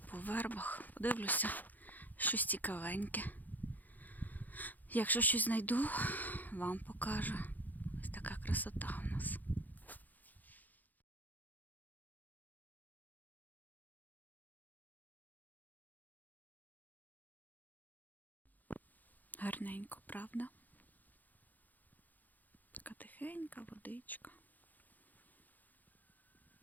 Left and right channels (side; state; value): right; late; 0.083 ms